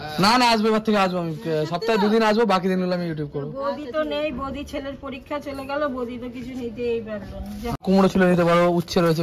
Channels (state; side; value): identical; both; correlation 1.00